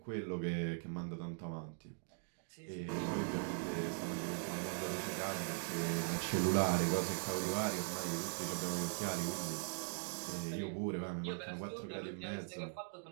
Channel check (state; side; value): silent; left; 50 dB below the other